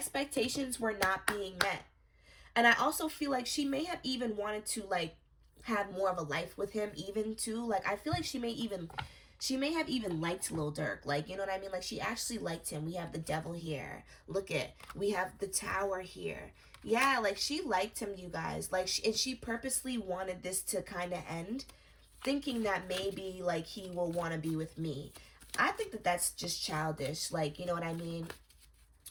were not being met. And I also feel like she may have even wanted to, like, have more of a life with him even, too. Like, I feel like she may have even liked Lil Durk. Like, you know what I mean? Like, she actually liked him. We have the devil here. Look it. We have the tower here. Yeah, like, she liked him, you guys. Like, and she purposely wanted this to kind of end, thinking that maybe, like, he will want to be with me. I think that that's just childish. Like, you know what I mean?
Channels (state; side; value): identical; both; correlation 1.00